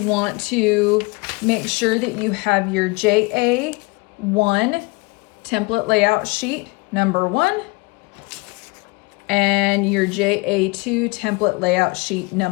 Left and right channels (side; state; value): right; quieter; 26.0 dB